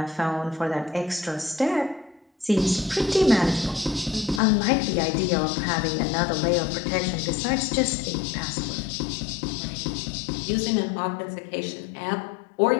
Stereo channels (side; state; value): right; drops out; at 4.4 s